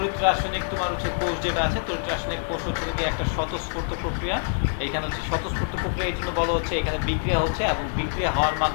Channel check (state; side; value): silent; right; digital silence